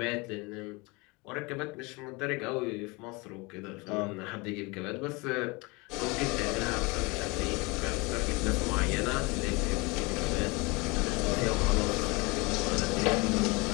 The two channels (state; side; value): quieter; right; 26.5 dB